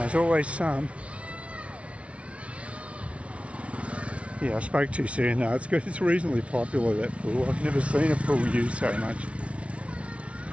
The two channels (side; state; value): left; late; 0.062 ms